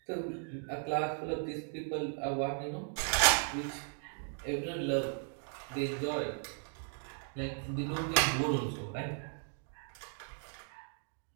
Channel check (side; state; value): left; silent; 53 dB below the other